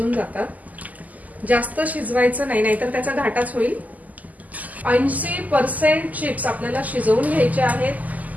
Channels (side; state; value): left; late; 0.078 ms